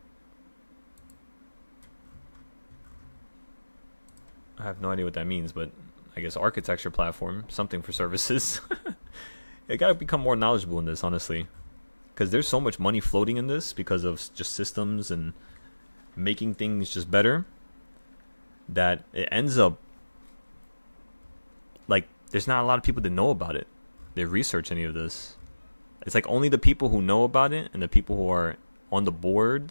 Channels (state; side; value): inverted; both; correlation -1.00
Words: I have no idea what that means, but I guess architecture platform, something for services. You gotta become more knowledgeable in this, honestly, because there's so much money floating in this because of just systems and making things just better that it ends up like there's not a lot of people that know about it. They research any of this. It's like only the people who know about it and the people who are on the board,